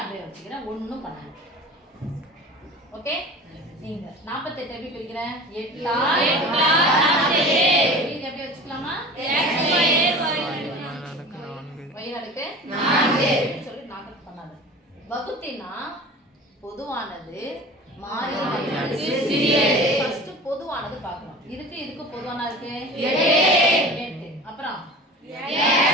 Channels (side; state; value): both; normal; correlation 0.38